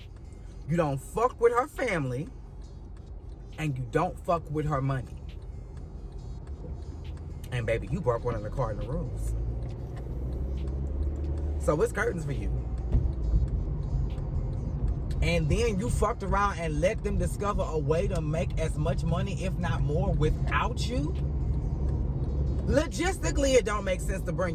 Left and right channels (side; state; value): both; identical; correlation 1.00